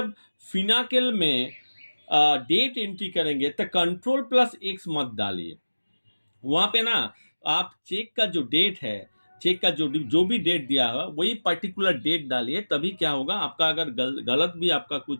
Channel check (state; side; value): inverted; both; correlation -1.00